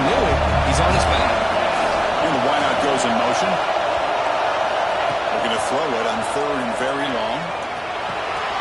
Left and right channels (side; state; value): both; identical; correlation 1.00